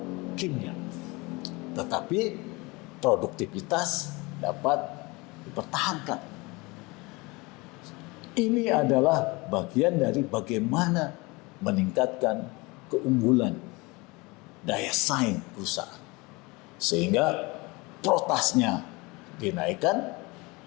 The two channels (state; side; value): quieter; right; 24.9 dB